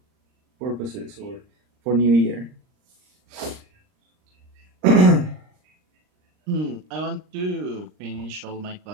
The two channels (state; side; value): late; left; 39 ms